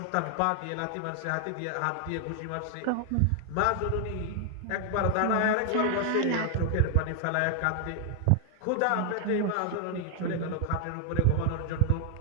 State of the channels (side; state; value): both; different; correlation 0.00